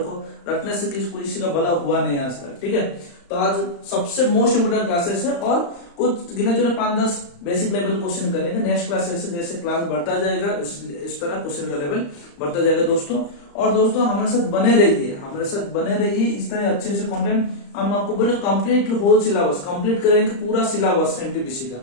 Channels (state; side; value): late; right; 35 ms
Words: रटने से किसी का भला हुआ नहीं आज तक, ठीक है। तो आज सबसे मोस्ट इंपोर्टेंट क्लासेस है और कुछ गिने चुने 5-10 बेसिक लेवल क्वेश्चन करेंगे। नेक्स्ट क्लासेस जैसे क्लास बढ़ता जाएगा इस तरह क्वेश्चन का लेवल बढ़ता जाएगा दोस्तों। और दोस्तों हमारे साथ बने रहिए इस तरह अच्छे से कंटेंट हम आपको बोले कंप्लीट होल सिलेबस कंप्लीट करेंगे, पूरा सिलेबस NTPC का,